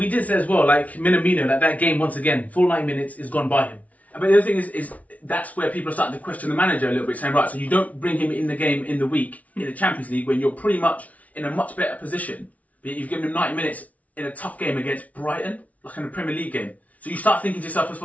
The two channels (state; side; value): late; right; 0.069 ms